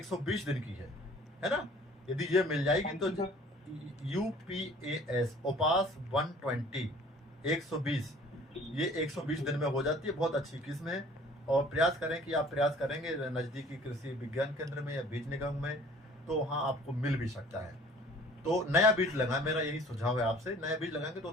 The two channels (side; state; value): both; normal; correlation 0.51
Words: दिन की है ना। यदि ये मिल जाएगी तो UPAS उपास 120 120, ये 120 दिन में हो जाती है, बहुत अच्छी किस्म है। और प्रयास करें कि आप प्रयास करेंगे नज़दीकी कृषि विज्ञान केंद्र में या बीज निगम में, तो वहाँ आपको मिल भी सकता है। तो नया बीज लगाएं, मेरा यही सुझाव है आपसे। नया बीज लगाएंगे